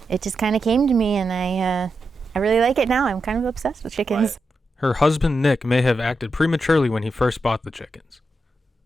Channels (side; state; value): both; normal; correlation 0.87